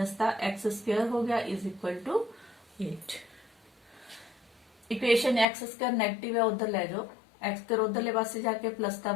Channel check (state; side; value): drops out; right; at 5.5 s